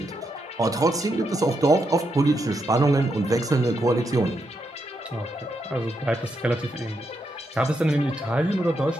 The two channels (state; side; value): normal; both; correlation 0.82